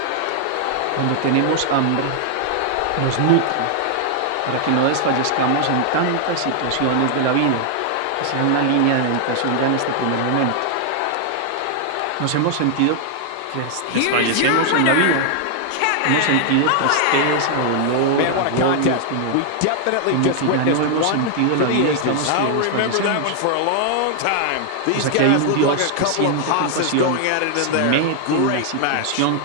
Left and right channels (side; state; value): both; different; correlation 0.00